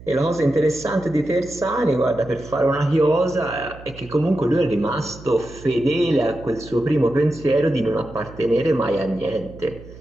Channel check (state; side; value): noise; right; hum, 18 dB below the sound